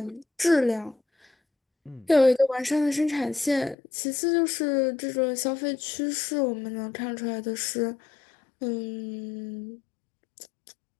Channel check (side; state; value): right; drops out; at 3.8 s